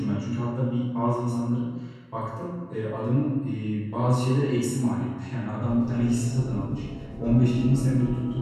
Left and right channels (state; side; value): identical; both; correlation 1.00